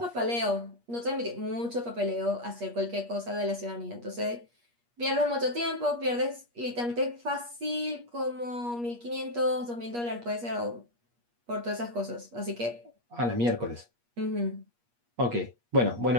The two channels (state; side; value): late; left; 8.4 ms